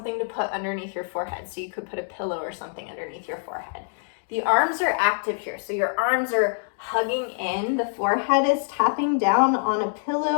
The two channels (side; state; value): right; silent; digital silence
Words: to put underneath your forehead. So you could put a pillow or something underneath your forehead. The arms are active here. So your arms are hugging in. The forehead is tapping down on a